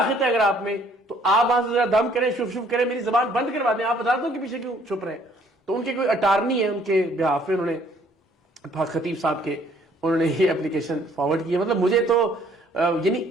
ہے اگر آپ میں, تو آپ وہاں سے ذرا دم کریں, شف شف کریں, میری زبان بند کروا دیں. آپ عدالتوں کے پیچھے کیوں چھپ رہے ہیں؟ تو ان کے کوئی اٹارنی ہے, ان کے بہاف میں انہوں نے خطیب صاحب کے انہوں نے یہ اپلیکیشن فارورڈ کی ہے. مطلب مجھے تو یعنی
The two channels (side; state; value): both; normal; correlation 0.61